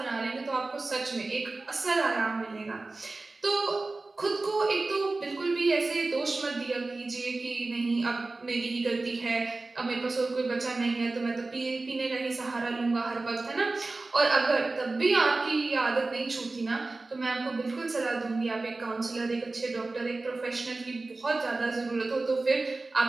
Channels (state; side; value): quieter; left; 3.3 dB